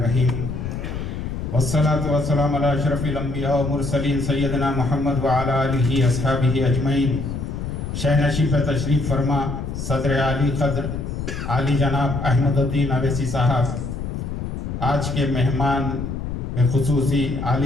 والصلاة والسلام علی اشرف الانبیاء والمرسلین سیدنا محمد وعلی آلہ اصحابہ اجمعین۔ شہ نشیب تشریف فرما صدر عالی قدر عالی جناب احمد الدین اویسی صاحب، آج کے مہمان خصوصی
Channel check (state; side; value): noise; left; rumble, 5 dB below the sound